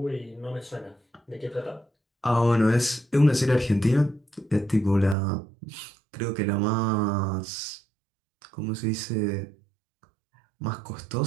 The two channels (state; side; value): drops out; left; at 5.2 s